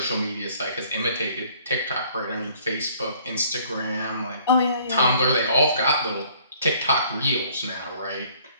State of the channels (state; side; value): inverted; both; correlation -0.58